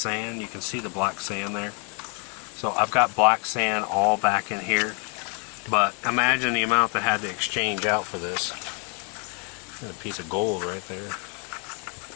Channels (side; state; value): right; quieter; 37.4 dB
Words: You can see the black sand there. So I've got black sand all back in here, but imagine the amount that had to exchange out for this. A piece of gold right there.